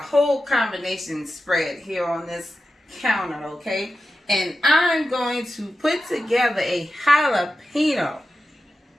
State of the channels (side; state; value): both; normal; correlation 0.92